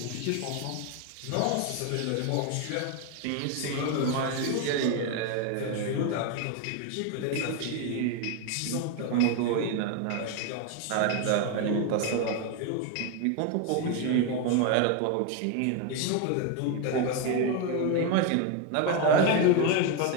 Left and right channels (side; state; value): both; different; correlation 0.02